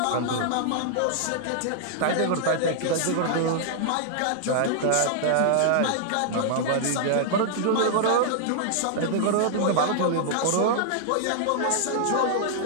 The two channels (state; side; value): different; both; correlation -0.01